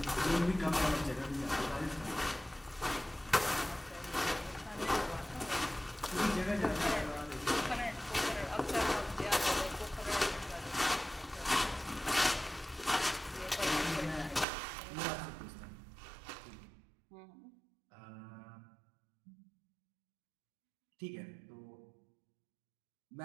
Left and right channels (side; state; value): left; drops out; at 14.5 s